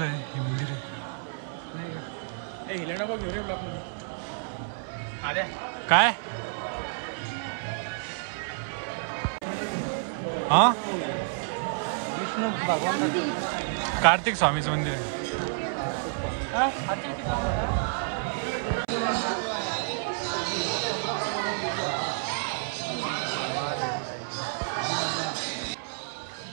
आहे। हे मंदिर आहे काय? हा, विष्णू भगवान कार्तिक स्वामीचं मंदिर आहे।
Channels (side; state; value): left; silent; 58 dB below the other